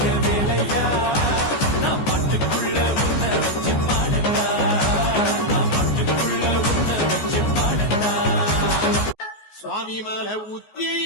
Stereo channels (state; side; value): late; right; 14 ms